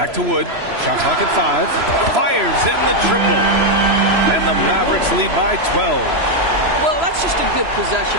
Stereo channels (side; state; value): left; late; 3.0 ms